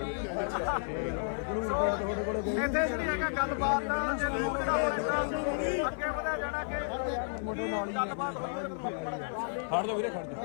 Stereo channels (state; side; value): silent; right; 56 dB below the other